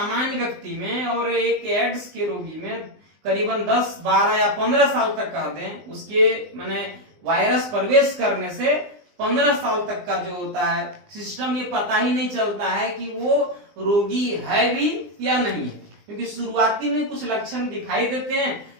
व्यक्ति में और एक एड्स के रोगी में करीबन 10, 12 या 15 साल तक कह दें, उसके माने वायरस प्रवेश करने से 15 साल तक का जो होता है सिस्टम, ये पता ही नहीं चलता है कि वो रोगी है भी या नहीं है। क्योंकि शुरुआती में कुछ लक्षण दिखाई देते हैं,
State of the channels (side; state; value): left; late; 19 ms